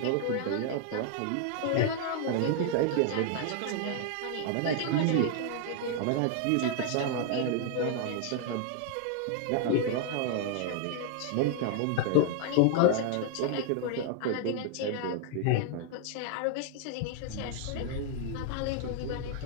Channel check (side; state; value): both; different; correlation 0.00